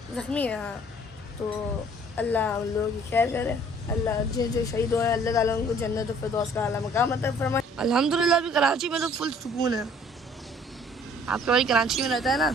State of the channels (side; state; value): both; normal; correlation 0.56